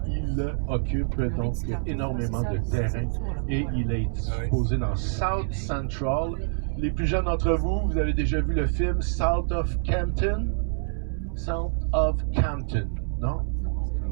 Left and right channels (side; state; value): left; silent; digital silence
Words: il occupe donc énormément de terrain. Et il est disposé dans South Central. Les plus jeunes d'entre vous, vous avez déjà vu le film South of Campton? South of Campton, non?